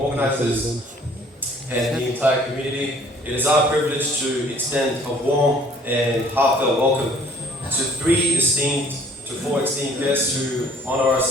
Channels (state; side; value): normal; both; correlation 0.57